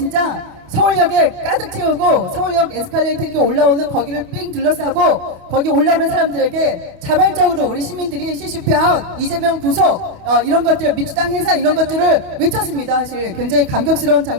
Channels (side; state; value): left; late; 28 ms